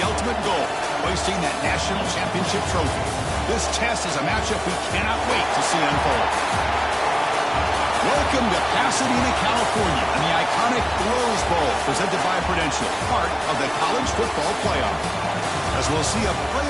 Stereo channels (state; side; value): identical; both; correlation 1.00